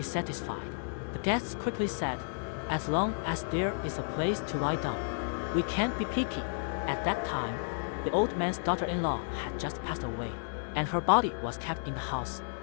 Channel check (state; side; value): silent; right; 56 dB below the other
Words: satisfied. The guests quickly said, "As long as there is a place to lie down, we can't be picky." At that time, the old man's daughter-in-law had just passed away, and her body was kept in the house.